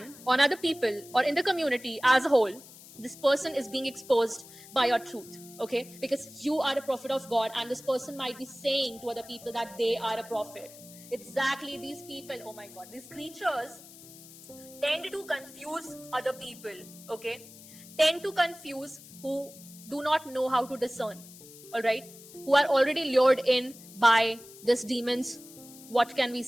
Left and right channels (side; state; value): left; noise; hiss, 19 dB below the sound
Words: on other people or in the community as a whole, this person is being exposed by your truth, okay? Because you are a prophet of God, and this person might be saying to other people that they are a prophet. Exactly, these people, oh my God, these creatures tend to confuse other people, okay? Tend to confuse who do not know how to discern, all right? Who are already lured in by this demon's, what can we